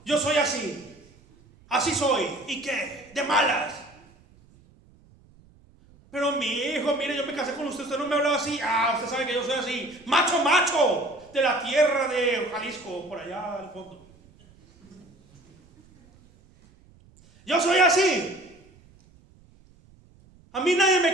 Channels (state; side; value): noise; right; rumble, 28 dB below the sound